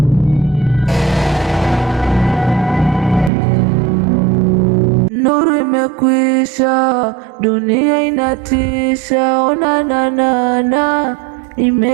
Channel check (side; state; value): left; drops out; at 3.3 s